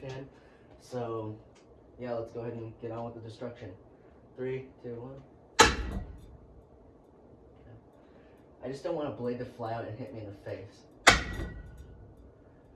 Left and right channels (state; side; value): identical; both; correlation 1.00